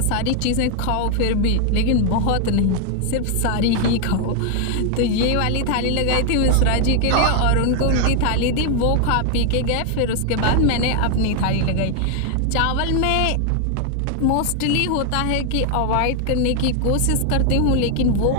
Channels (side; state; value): both; different; correlation 0.00